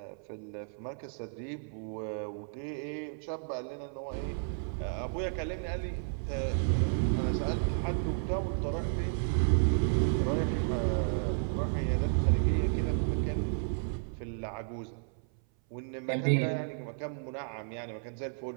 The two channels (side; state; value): left; silent; 56 dB below the other